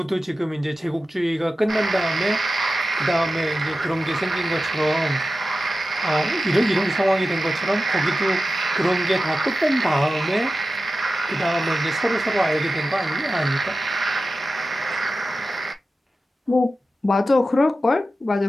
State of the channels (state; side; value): normal; both; correlation 0.93